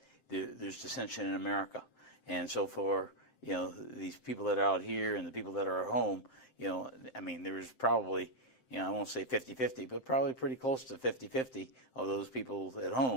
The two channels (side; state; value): right; late; 7.7 ms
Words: there's dissension in America. And so for, these people that are out here and the people that are at home, there was probably, I won't say 50-50, but probably pretty close to 50-50 of those people at